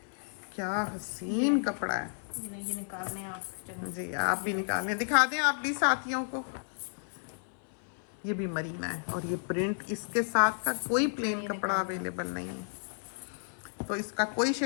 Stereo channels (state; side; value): silent; right; 56 dB below the other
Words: क्या हसीन कपड़ा है। ये निकालने आप जी, आप भी निकालने, दिखा दें आप भी साथियों को। ये भी मरीना है और ये प्रिंट इसके साथ का कोई प्लेन कपड़ा अवेलेबल नहीं है। तो इसका कोई